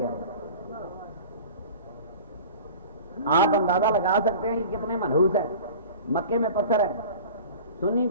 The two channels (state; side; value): inverted; both; correlation -0.39